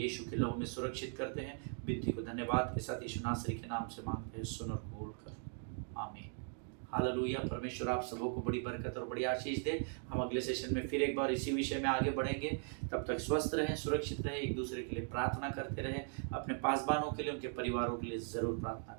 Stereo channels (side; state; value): left; silent; 52 dB below the other